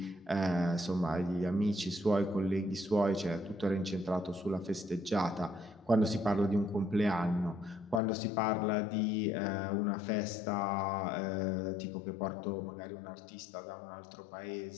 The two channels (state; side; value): drops out; right; at 8.0 s